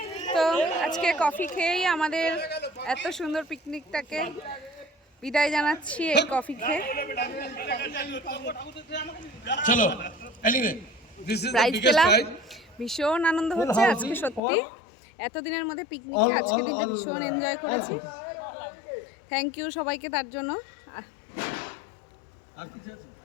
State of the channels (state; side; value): drops out; right; at 14.4 s